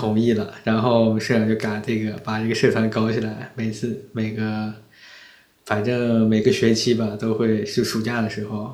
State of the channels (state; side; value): identical; both; correlation 1.00